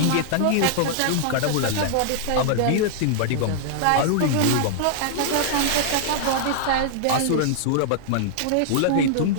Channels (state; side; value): different; both; correlation -0.01